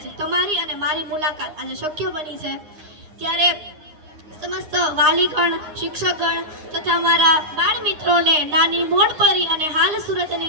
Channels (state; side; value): late; left; 9.7 ms